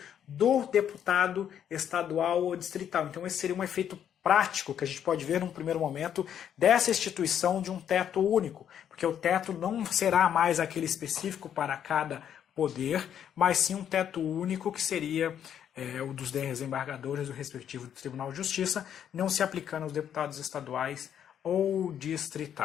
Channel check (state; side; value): quieter; right; 9.3 dB